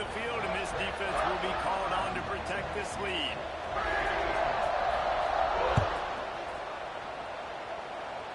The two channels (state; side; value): identical; both; correlation 1.00